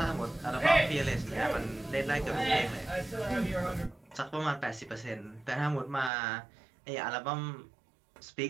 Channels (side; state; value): left; drops out; at 6.1 s